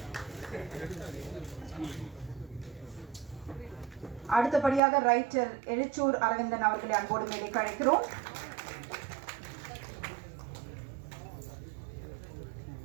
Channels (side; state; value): left; drops out; at 4.8 s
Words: அடுத்தபடியாக ரைட்டர் எழுச்சூர் அரவிந்தன் அவர்களை அன்போடு மேடைக்கு அழைக்கிறோம்.